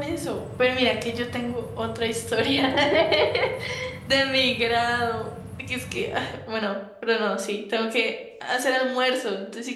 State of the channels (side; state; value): both; identical; correlation 1.00